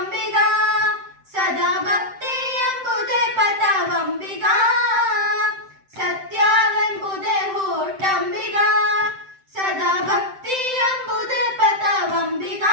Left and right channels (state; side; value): late; left; 7.7 ms